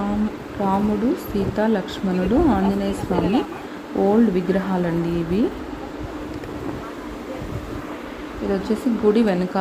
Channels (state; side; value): identical; both; correlation 1.00